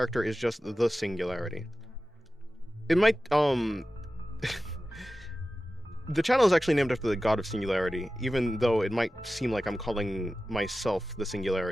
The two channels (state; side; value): normal; both; correlation 0.94